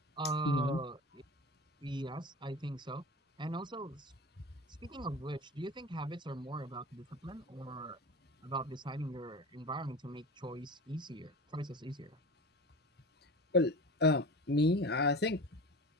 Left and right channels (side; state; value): both; normal; correlation 0.32